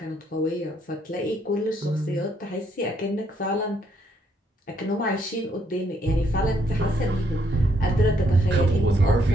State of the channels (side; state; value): both; normal; correlation 0.72